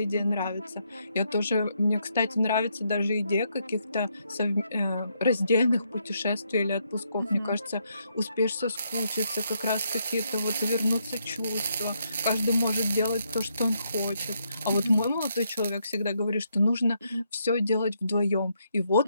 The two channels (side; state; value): both; inverted; correlation -0.76